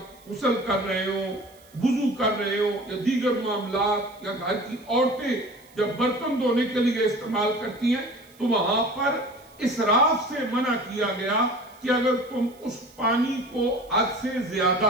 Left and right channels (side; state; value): right; noise; hiss, 27 dB below the sound